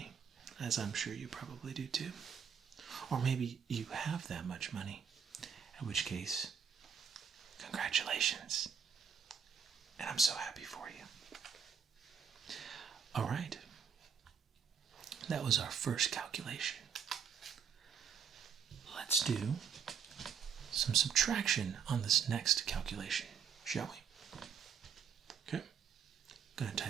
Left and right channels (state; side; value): quieter; left; 7.1 dB